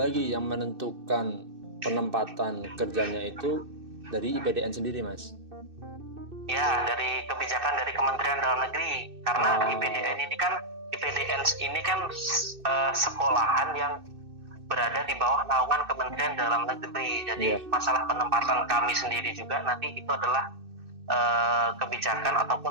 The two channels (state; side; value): late; left; 2.6 ms